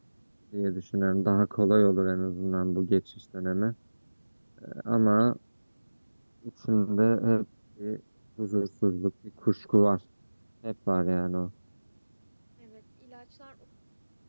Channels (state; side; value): inverted; both; correlation -1.00